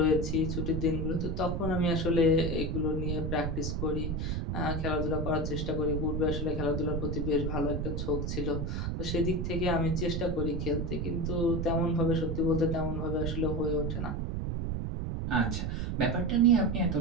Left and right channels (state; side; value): noise; right; rumble, 1 dB below the sound